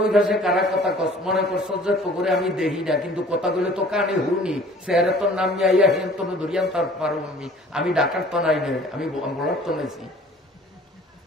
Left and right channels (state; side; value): normal; both; correlation 0.51